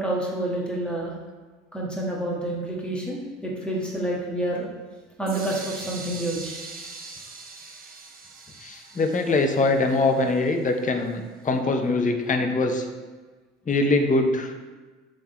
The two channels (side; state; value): both; normal; correlation 0.45